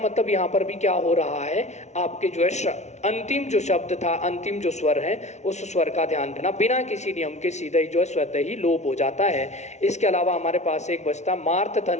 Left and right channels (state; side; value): late; right; 0.32 ms